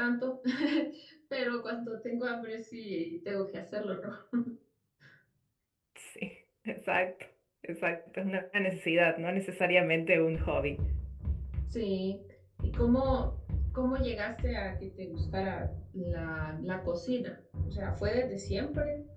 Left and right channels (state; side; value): identical; both; correlation 1.00